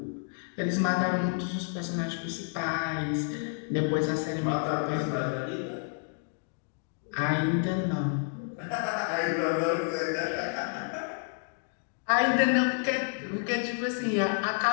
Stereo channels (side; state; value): right; silent; 55 dB below the other